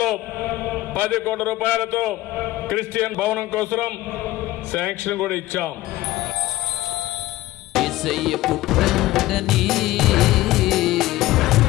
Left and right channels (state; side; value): quieter; right; 17.0 dB